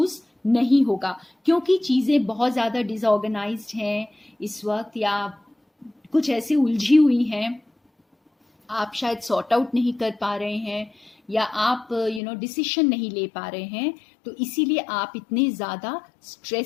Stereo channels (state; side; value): drops out; right; at 12.2 s